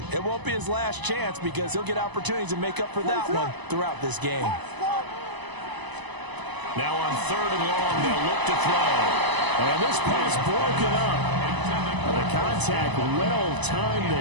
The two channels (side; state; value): left; late; 1.0 ms